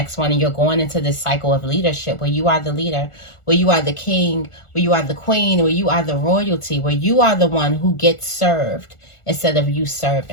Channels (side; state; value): right; late; 1.4 ms